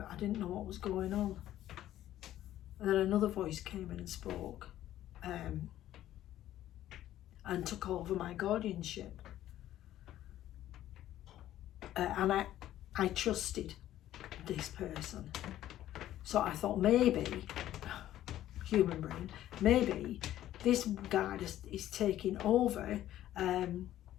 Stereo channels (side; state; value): right; quieter; 13.1 dB